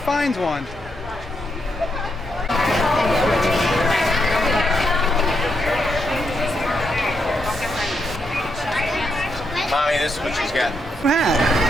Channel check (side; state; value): both; normal; correlation 0.81